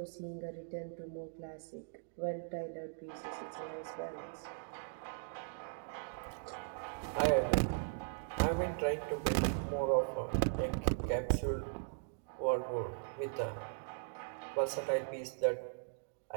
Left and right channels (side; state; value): left; silent; digital silence